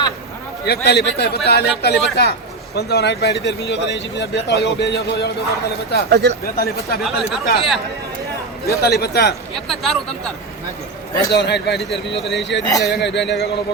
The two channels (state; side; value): quieter; left; 3.6 dB